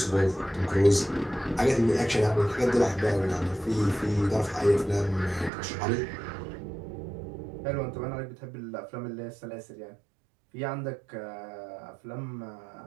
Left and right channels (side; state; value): left; drops out; at 5.5 s